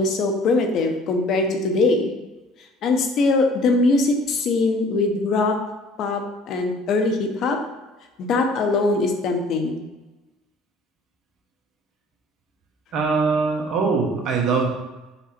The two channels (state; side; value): normal; both; correlation 0.52